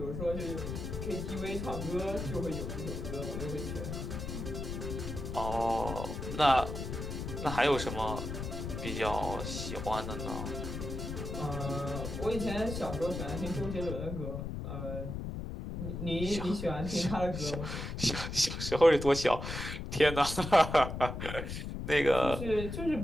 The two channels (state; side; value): noise; left; rumble, 5 dB below the sound